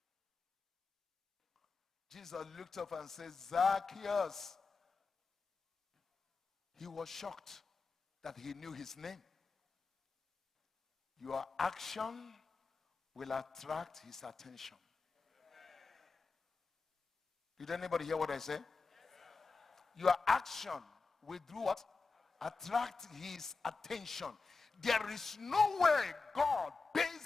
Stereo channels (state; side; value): quieter; right; 4.2 dB